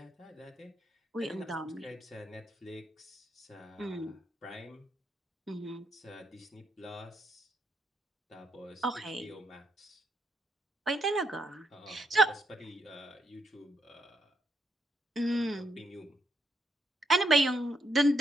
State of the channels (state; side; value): normal; both; correlation 0.77